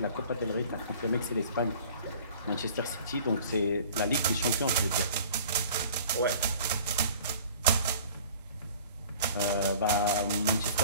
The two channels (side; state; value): both; inverted; correlation -0.47